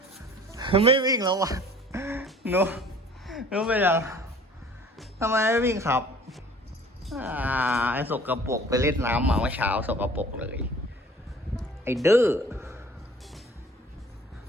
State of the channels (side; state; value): both; normal; correlation 0.50